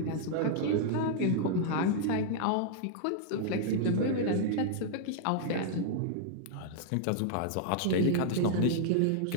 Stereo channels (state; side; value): different; both; correlation -0.01